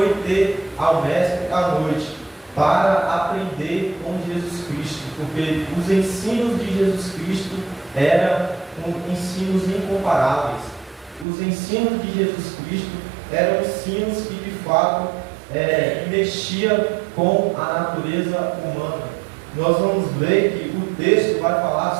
ter ao mestre à noite para aprender com Jesus Cristo, porque os ensinos de Jesus Cristo eram ensinos incomparáveis. Os ensinos de Jesus Cristo eram ensinos que de fato mexia com a natureza humana. Nós vamos ver que o texto vai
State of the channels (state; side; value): drops out; left; at 11.2 s